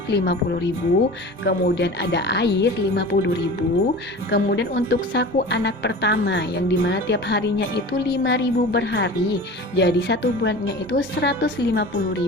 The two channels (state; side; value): normal; both; correlation 0.36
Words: 50.000, kemudian ada air 50.000, kemudian untuk saku anak pertama yang dimana tiap harinya itu 5.000 per hari, jadi satu bulannya itu